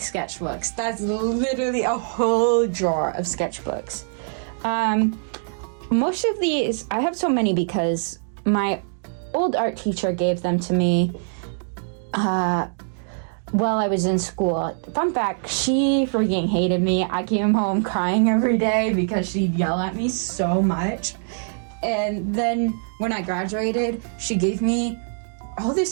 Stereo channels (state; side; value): silent; left; digital silence